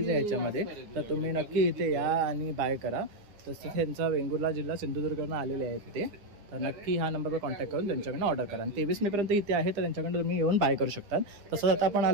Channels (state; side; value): late; left; 9.8 ms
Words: आहे ह्याच्यामध्ये. तर तुम्ही नक्की इथे या आणि बाय करा. तसंच त्यांचा वेंगुर्ला जिल्हा सिंधुदुर्गवरून आलेले आहेत ते. तर नक्की ह्या नंबरवर कॉन्टॅक्ट करून त्यांच्याकडनं ऑर्डर करा. आणि 23 मेपर्यंत इथे आहे, तर त्यांच्याकडनं तुम्ही येऊन बाय करू शकता. तसंच आता आपण